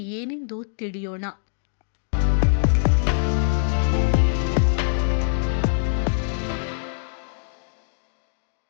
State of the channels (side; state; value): right; silent; digital silence